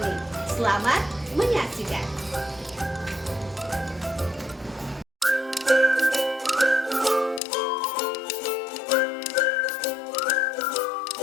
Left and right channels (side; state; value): right; drops out; at 7.4 s